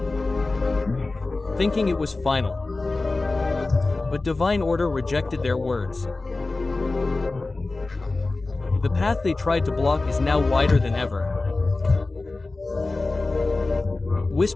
thinking it was final. But divine order rejected their words. The path they tried to block is now wider than ever.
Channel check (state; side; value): quieter; right; 3.3 dB